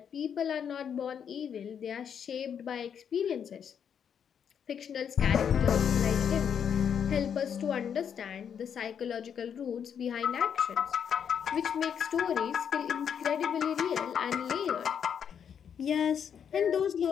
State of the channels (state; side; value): quieter; right; 7.9 dB